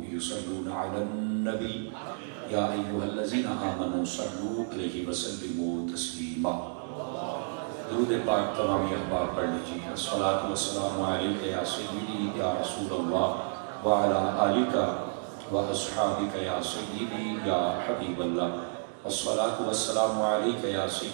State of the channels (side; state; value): left; silent; digital silence